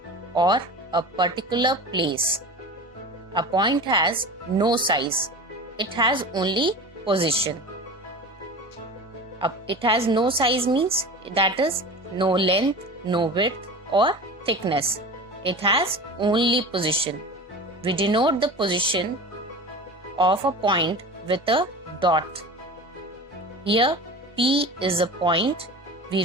or a particular place. A point has no size. It has only position. It has no size means that is no length, no width or thickness. It has only position. We denote the position of a point with a dot. Here P is a point. We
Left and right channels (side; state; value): both; normal; correlation 0.34